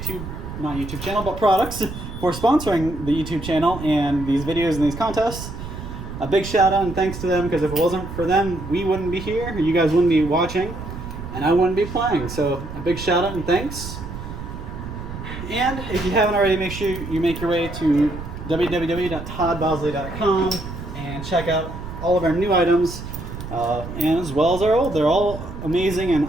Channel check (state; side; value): noise; right; rumble, 9 dB below the sound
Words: YouTube channel, but products, for sponsoring the YouTube channel and these videos and these contests. A big shout out and thanks to them, because if it wasn't for them, we wouldn't be here, you guys wouldn't be watching, and I wouldn't be playing. So a big shout out and thanks. And if you haven't already, make sure you make your way to www.toddbowsley.com and check out all of our new items, and as well as our old. They're all amazing and